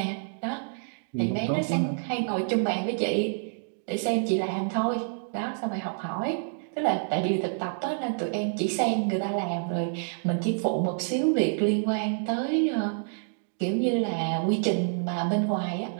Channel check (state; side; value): silent; left; digital silence